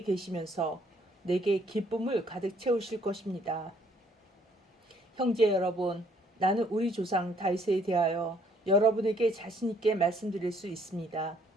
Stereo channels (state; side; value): normal; both; correlation 0.64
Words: 계시면서 내게 기쁨을 가득 채우실 것입니다. 형제 여러분, 나는 우리 조상 다윗에 대하여 여러분에게 자신 있게 말씀드릴 수 있습니다.